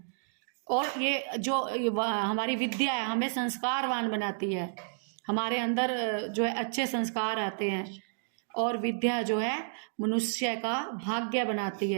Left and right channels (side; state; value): left; silent; digital silence